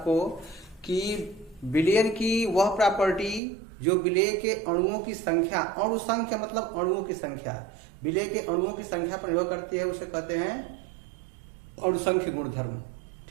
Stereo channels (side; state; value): left; drops out; at 3.4 s